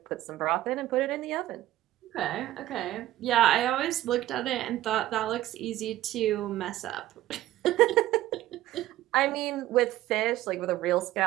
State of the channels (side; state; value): left; quieter; 14.7 dB